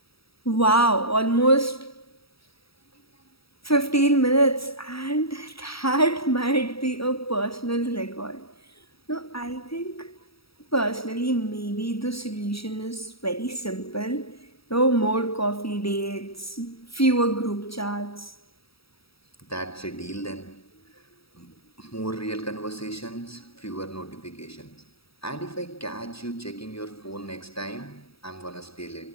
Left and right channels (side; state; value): right; late; 0.76 ms